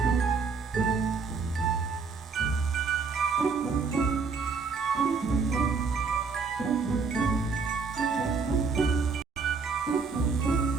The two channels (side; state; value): left; quieter; 4.9 dB